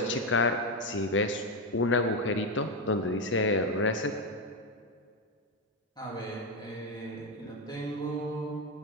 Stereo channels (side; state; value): both; normal; correlation 0.08